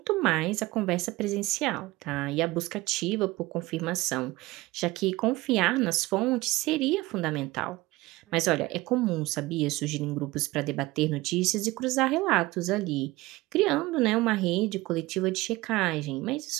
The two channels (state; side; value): quieter; left; 19.8 dB